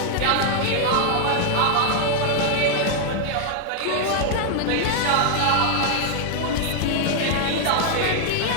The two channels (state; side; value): different; both; correlation 0.00